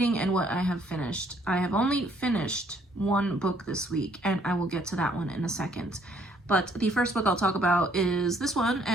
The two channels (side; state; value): both; normal; correlation 0.65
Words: and what I have finished. I have only finished one book this week, and I will get to that one in a second. But the first book I'll talk about is this one,